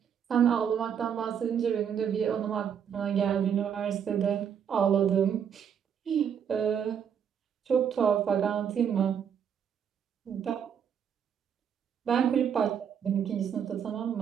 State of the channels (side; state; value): left; quieter; 8.0 dB